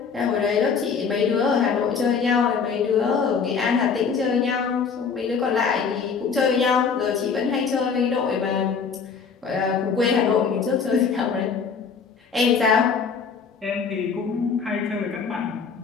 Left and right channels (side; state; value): right; quieter; 5.8 dB